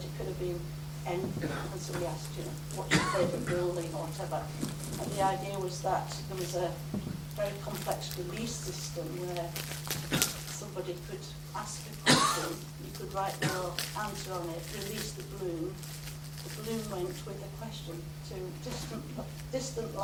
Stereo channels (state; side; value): identical; both; correlation 1.00